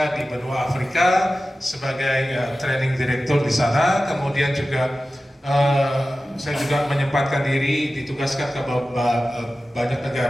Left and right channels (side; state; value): both; normal; correlation 0.95